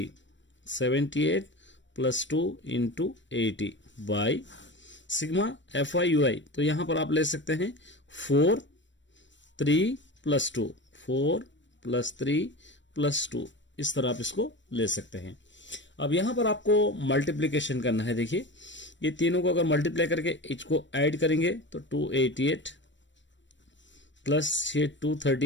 78 plus 2 into 80 by sigma f i u i. तो यहां पर आप ले सकते हैं 4 3 प्लस 2, 4 प्लस 3 प्लस 2, इस तरह आप इसको ले सकते हैं। अब यहां पर आपको मल्टीप्लीकेशन करना है। देखिए, ये तीनों को अगर मल्टीप्लाई करके इसको ऐड करेंगे तो 288 प्लस ये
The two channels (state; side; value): late; right; 0.54 ms